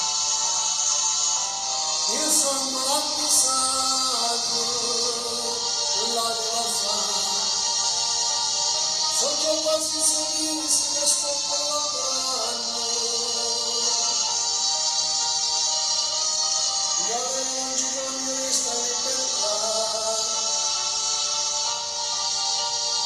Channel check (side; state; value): both; identical; correlation 1.00